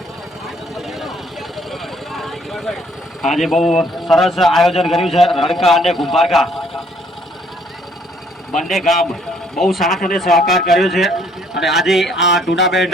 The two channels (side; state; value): both; normal; correlation 0.63